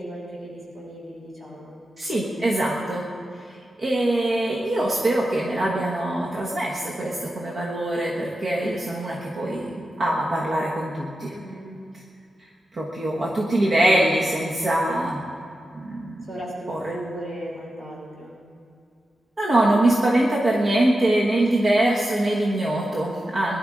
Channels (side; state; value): both; normal; correlation 0.91